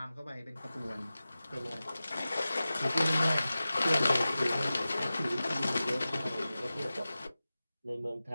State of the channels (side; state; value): both; inverted; correlation -0.96